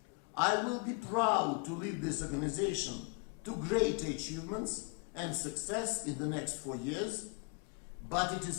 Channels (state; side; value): quieter; right; 33.9 dB